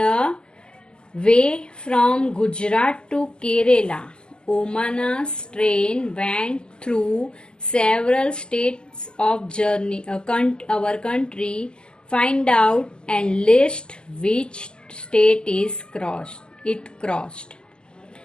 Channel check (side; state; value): right; late; 0.047 ms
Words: way from Gujarat to Kerala Omana's train went through several states of our country. Find out and list which state it crossed.